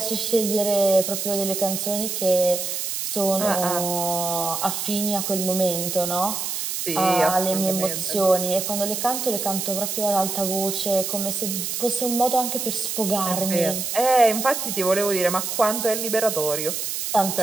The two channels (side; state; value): right; noise; hiss, 3 dB below the sound